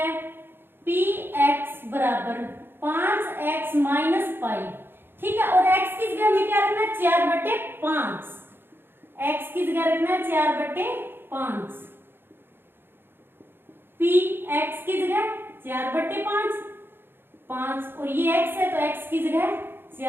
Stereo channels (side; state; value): left; late; 0.10 ms